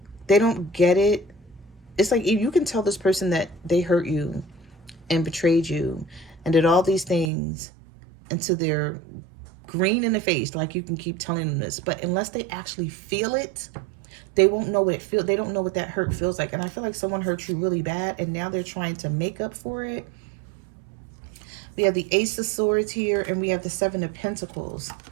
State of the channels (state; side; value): drops out; left; at 7.3 s